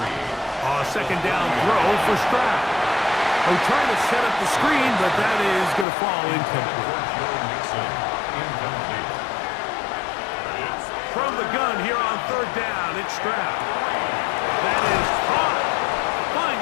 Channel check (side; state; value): right; drops out; at 5.9 s